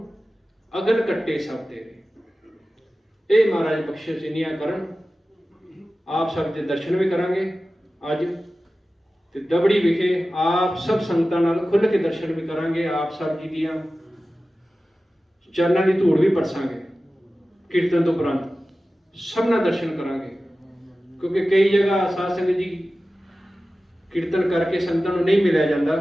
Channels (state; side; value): normal; both; correlation 0.95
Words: ਅਗਨ ਕੱਟੇ ਸਭ ਤੇਰੇ। ਇਹ ਮਹਾਰਾਜ ਬਖਸ਼ਿਸ਼ ਇੰਨੀਆਂ ਕਰਨ। ਆਪ ਸਭ ਦੇ ਦਰਸ਼ਨ ਵੀ ਕਰਾਂਗੇ ਅੱਜ, ਤੇ ਦਬੜੀ ਵਿਖੇ ਆਪ ਸਭ ਸੰਗਤਾਂ ਨਾਲ ਖੁੱਲ੍ਹ ਕੇ ਦਰਸ਼ਨ ਵੀ ਕਰਾਂਗੇ। ਆਪ ਸਭ ਜੀ ਦੀਆਂ ਚਰਨਾਂ ਦੀ ਧੂੜ ਵੀ ਪਰਸਾਂਗੇ ਕੀਰਤਨ ਤੋਂ ਉਪਰੰਤ, ਸਭਨਾ ਦਰਸ਼ਨ ਕਰਾਂਗੇ। ਕਿਉਂਕਿ ਕਈ ਜਗ੍ਹਾ ਸਾਧ ਸੰਗਤ ਜੀ ਕੀਰਤਨ ਕਰਕੇ ਸੰਗਤਾਂ ਨੂੰ ਨਹੀਂ ਮਿਲਿਆ